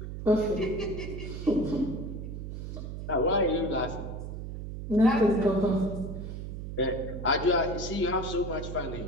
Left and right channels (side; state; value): right; noise; hum, 7 dB below the sound